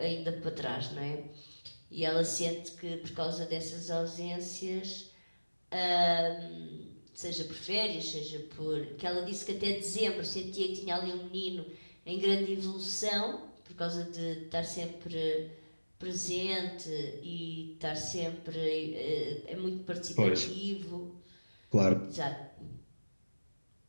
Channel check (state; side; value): inverted; both; correlation -1.00